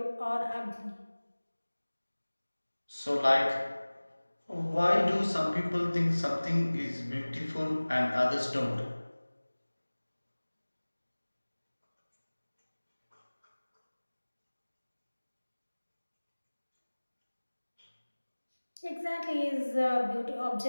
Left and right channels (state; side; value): inverted; both; correlation -1.00